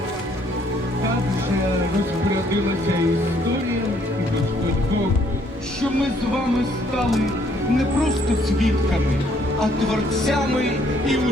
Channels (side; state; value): both; normal; correlation 0.65